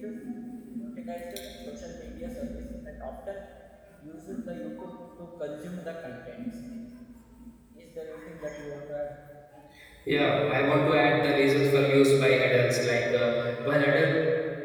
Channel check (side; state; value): both; identical; correlation 1.00